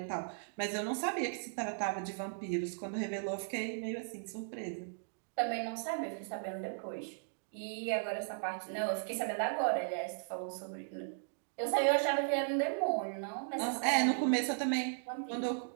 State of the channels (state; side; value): silent; left; digital silence